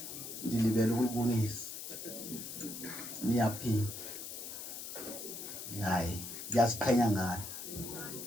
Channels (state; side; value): noise; left; hiss, 8 dB below the sound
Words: ndilibele ukubonisa niyaphila. Hayi, ndiyaziqhenya